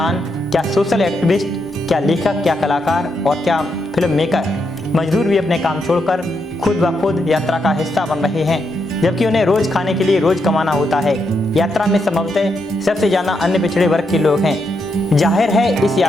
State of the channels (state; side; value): normal; both; correlation 0.81